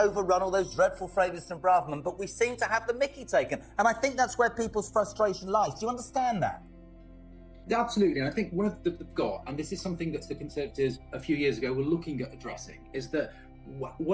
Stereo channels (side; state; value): both; identical; correlation 1.00